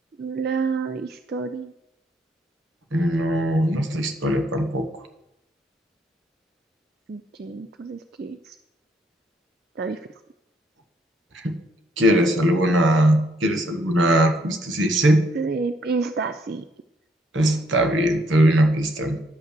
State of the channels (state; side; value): normal; both; correlation 0.71